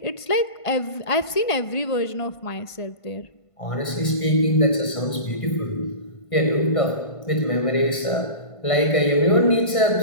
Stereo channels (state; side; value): late; right; 1.5 ms